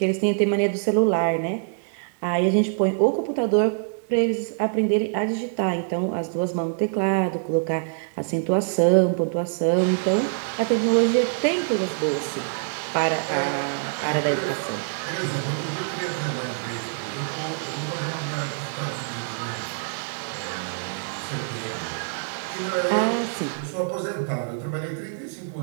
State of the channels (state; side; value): silent; left; digital silence